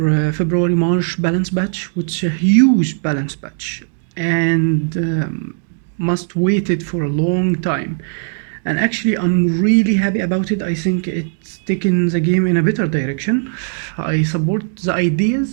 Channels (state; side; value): silent; left; 67 dB below the other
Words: February-March balance batch, which is a huge balance batch and must waited for a long time. And actually I'm really happy about it. I think it's taken the game in a better direction. I support the